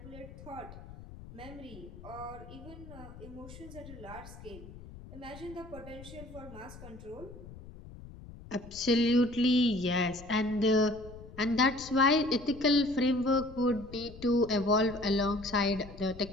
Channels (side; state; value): left; noise; rumble, 16 dB below the sound